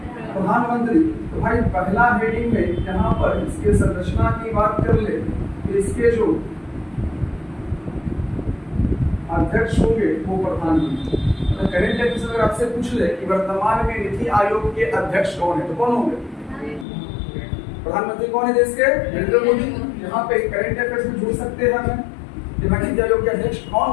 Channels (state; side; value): drops out; right; at 16.9 s